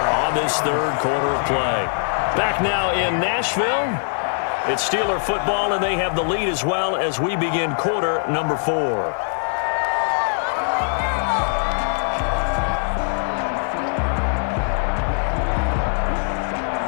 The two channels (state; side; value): silent; right; digital silence